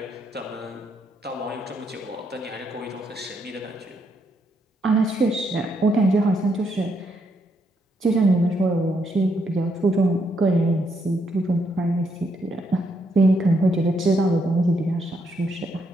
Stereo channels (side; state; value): both; normal; correlation 0.76